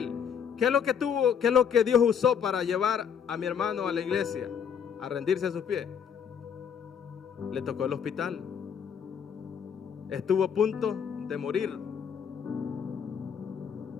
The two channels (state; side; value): quieter; right; 7.5 dB